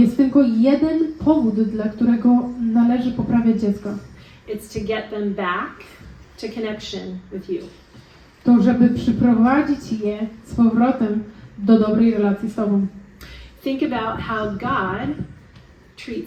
tylko jeden powód, dla którego należy poprawiać dziecko. It's to get them back to connection with you. To, żeby przyprowadzić je z powrotem do dobrej relacji z Tobą. Think about how God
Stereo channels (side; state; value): both; identical; correlation 1.00